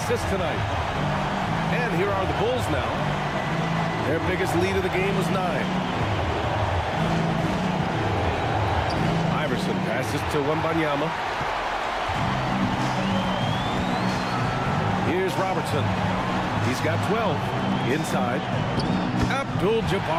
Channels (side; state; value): both; identical; correlation 1.00